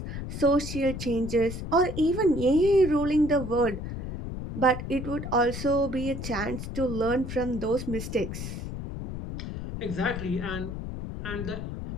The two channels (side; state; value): left; noise; rumble, 7 dB below the sound